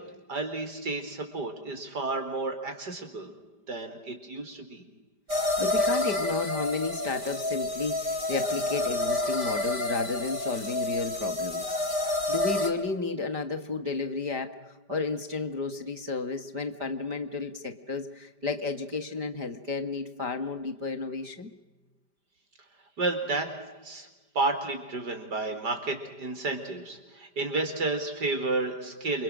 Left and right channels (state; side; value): late; left; 5.0 ms